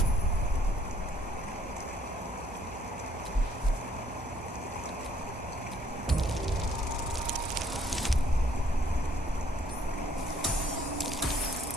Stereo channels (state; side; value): normal; both; correlation 0.64